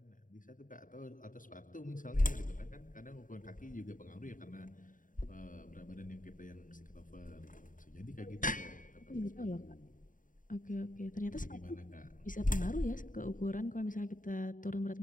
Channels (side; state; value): right; late; 0.39 ms